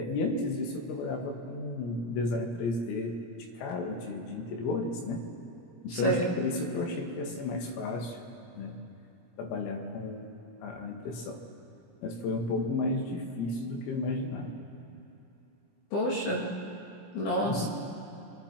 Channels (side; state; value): right; late; 17 ms